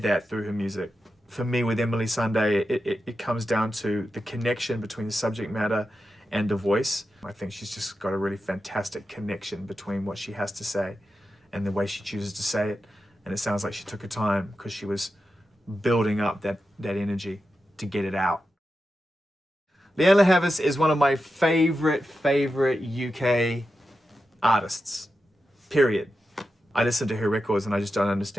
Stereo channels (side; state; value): both; normal; correlation 0.90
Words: that through her music. For me, with Emily Sandé, it comes down to the connection between the subject matter and the voice. I think she's just got a really fantastic connection between what she has to say and the way she chooses to say it. And it sounds like she took her time because she was building up that energy to get it out. Leonie Haas is one of my favorite UK artists, period. I listen to her records and I just don't